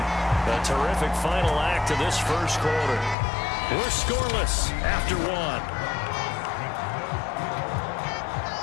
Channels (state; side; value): drops out; right; at 3.2 s